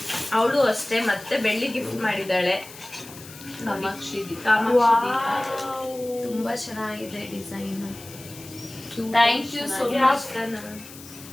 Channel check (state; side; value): noise; left; hiss, 17 dB below the sound